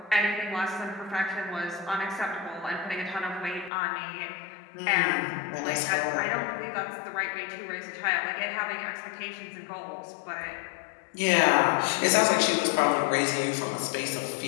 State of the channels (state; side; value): drops out; right; at 3.7 s